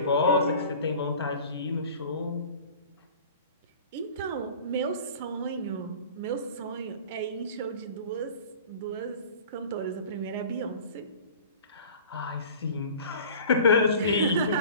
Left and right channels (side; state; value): both; inverted; correlation -0.41